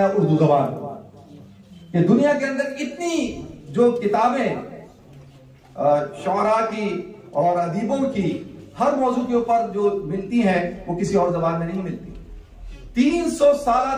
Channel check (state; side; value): identical; both; correlation 1.00